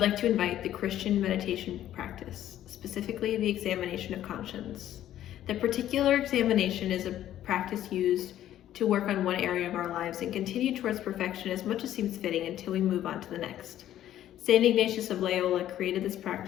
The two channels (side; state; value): right; quieter; 12.2 dB